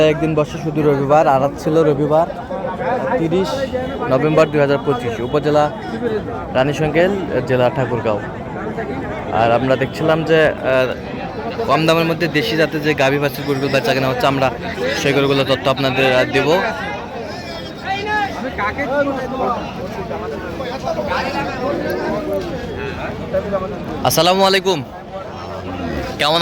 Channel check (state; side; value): identical; both; correlation 1.00